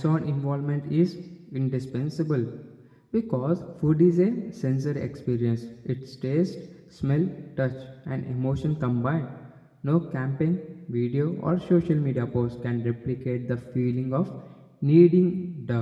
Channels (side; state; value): both; identical; correlation 1.00